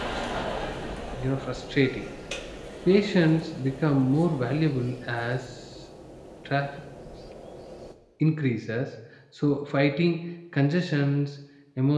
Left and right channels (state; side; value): identical; both; correlation 1.00